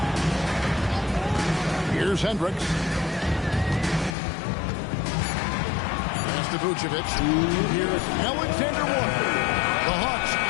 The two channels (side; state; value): right; drops out; at 4.2 s